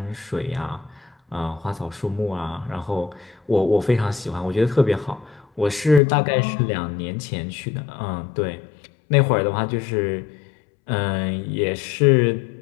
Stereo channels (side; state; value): right; drops out; at 6.0 s